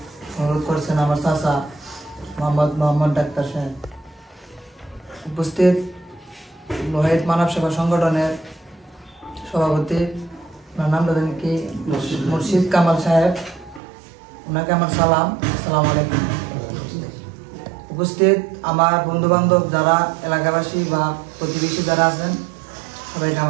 অনুরোধ করছেন আমার চাচা মোহাম্মদ ডাক্তার সাহেব। উপস্থিত লোহাইত মানব সেবা সংগঠনের সভাপতি ওনার নাম জানেন কি মুর্শিদ কামাল সাহেব, ওনাকে আমার সালাম, আসসালামু আলাইকুম। উপস্থিত আমার বন্ধু বান্ধব যারা এলাকাবাসী বা প্রতিবেশী যারা আছেন সবাইকে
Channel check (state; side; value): drops out; left; at 13.8 s